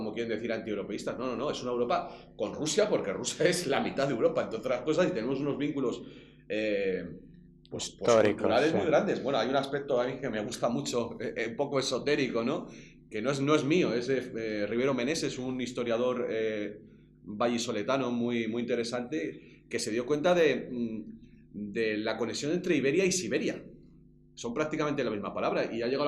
quieren decir antieuropeístas. No, es una Europa con Rusia, porque Rusia es la mitad de Europa, entre otras cosas, y tenemos unos vínculos pues Históricos, culturales sí. muy grandes. Bueno, hay un aspecto a mí que me gusta mucho, un poco esotérico, ¿no? Que no es mío, es de Rivero Meneses, un historiador vallisoletano muy, muy interesante, que se dio cuenta de la conexión entre Iberia y Siberia. Son prácticamente la misma palabra y ha llegado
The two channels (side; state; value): both; identical; correlation 1.00